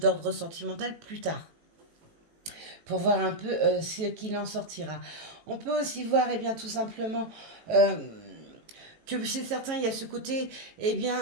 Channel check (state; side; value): late; left; 18 ms